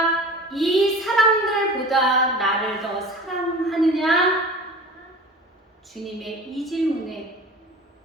이 사람들보다 나를 더 사랑하느냐? 주님의 이 질문에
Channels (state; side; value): normal; both; correlation 0.39